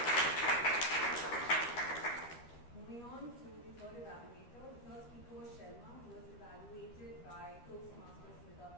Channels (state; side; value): late; right; 13 ms